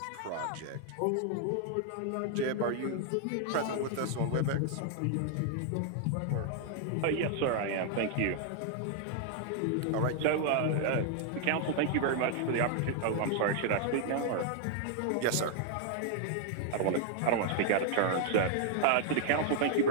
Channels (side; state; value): both; different; correlation 0.00